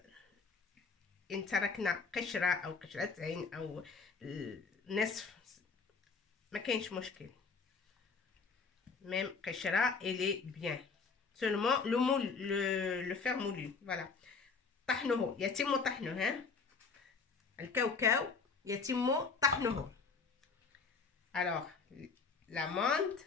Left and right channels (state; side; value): quieter; right; 4.8 dB